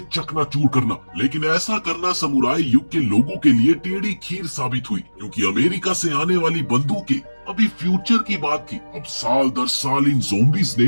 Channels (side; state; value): both; inverted; correlation -1.00